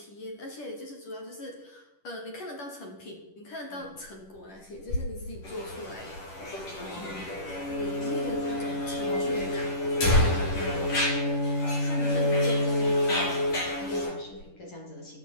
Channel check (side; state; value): right; late; 10 ms